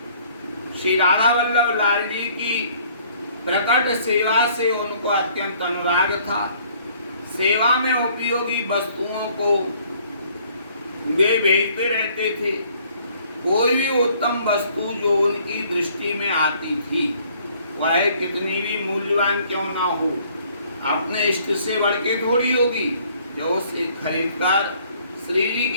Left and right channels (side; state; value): both; inverted; correlation -0.60